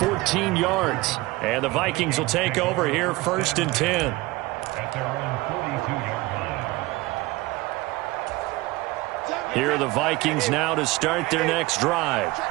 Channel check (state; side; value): quieter; left; 20.9 dB